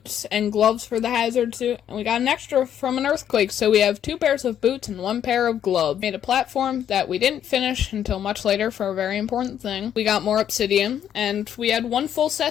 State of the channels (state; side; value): quieter; right; 9.8 dB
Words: and gloves for the hazard suit, and we got an extra from an earthquake, so we have 2 pairs of boots and 1 pair of gloves. Made a platform that we didn't finish until much later for a very important thing. We got more obsidian, and we had 1 full